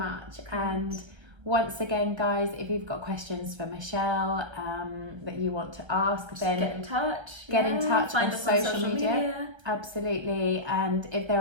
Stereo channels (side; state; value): left; late; 1.3 ms